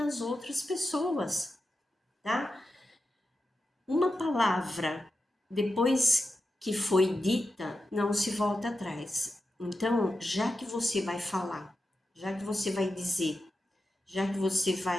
outras pessoas, tá? Uma palavra, depois que foi dita, não se volta atrás. Então, já que você vai falar, já que você vai dizer, já que você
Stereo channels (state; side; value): normal; both; correlation 0.90